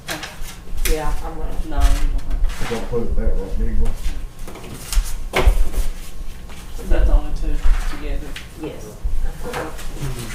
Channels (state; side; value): identical; both; correlation 1.00